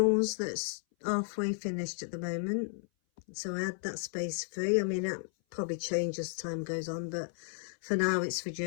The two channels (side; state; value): right; silent; 55 dB below the other